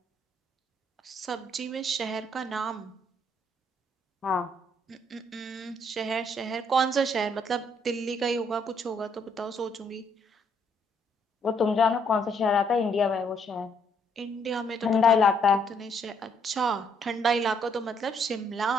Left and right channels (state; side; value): normal; both; correlation 0.69